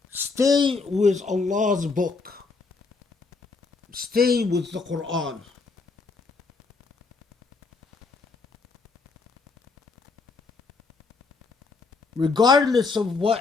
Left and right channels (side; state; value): right; quieter; 4.2 dB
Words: Stay with Allah's book. Stay with the Quran. Regardless of